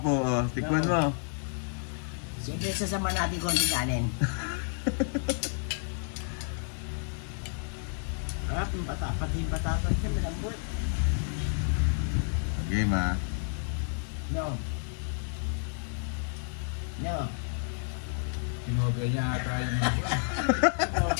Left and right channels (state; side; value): silent; right; 57 dB below the other